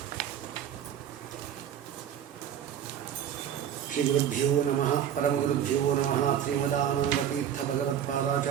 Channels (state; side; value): quieter; left; 9.7 dB